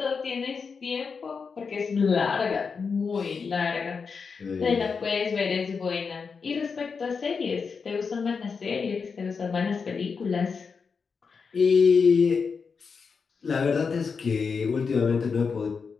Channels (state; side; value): quieter; right; 5.4 dB